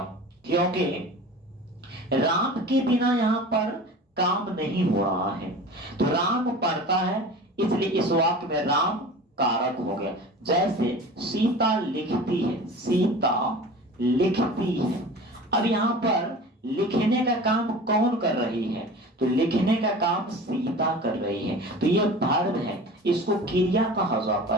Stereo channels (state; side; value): normal; both; correlation 0.38